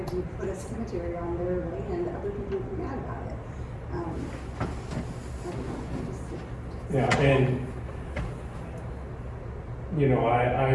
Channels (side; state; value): both; identical; correlation 1.00